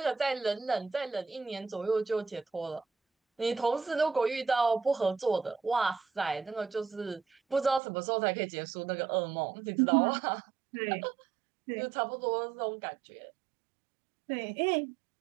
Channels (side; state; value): left; drops out; at 7.8 s